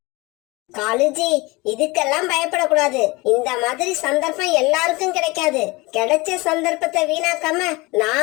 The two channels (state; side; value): quieter; right; 23.9 dB